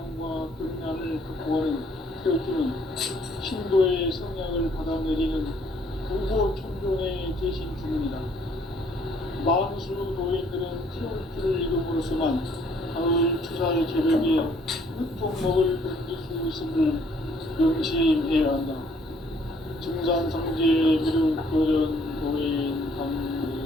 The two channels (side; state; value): both; normal; correlation 0.63